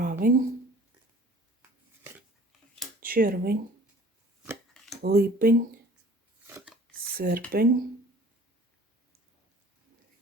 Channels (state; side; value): normal; both; correlation 0.49